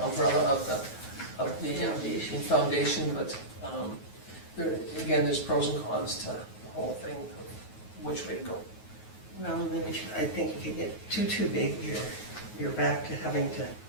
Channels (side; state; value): right; late; 9.3 ms